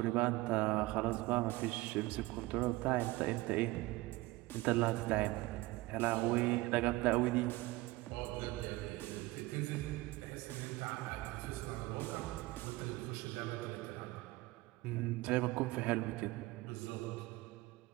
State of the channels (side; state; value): left; quieter; 20.2 dB